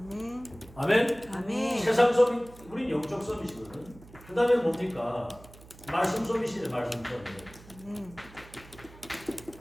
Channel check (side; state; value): right; noise; hum, 21 dB below the sound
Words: 아멘. 아멘. 세상 서밋, 우린 영적 서밋이거든. 그 다음에 뭡니까? 말씀 서밋이네. 말씀 서밋.